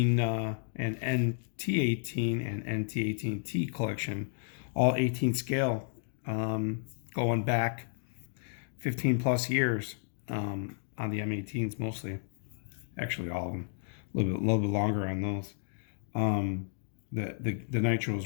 and NT18 and NT18T collection, all 18 scale, going back 15 plus years on the M18s mostly, actually all of them, a little bit longer on those. The nitros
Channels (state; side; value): silent; right; digital silence